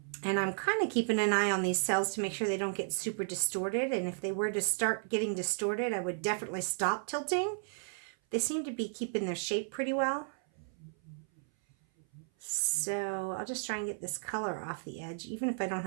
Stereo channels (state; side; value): silent; left; 55 dB below the other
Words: And I'm kind of keeping an eye on these cells to make sure they don't get super distorted. And if they were to start getting distorted, I would definitely stop tilting. They seem to be keeping their shape pretty well. So I'll just try and get this color off the edge, even if I don't